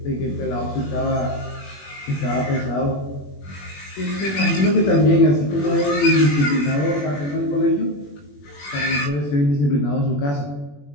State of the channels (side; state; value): right; late; 21 ms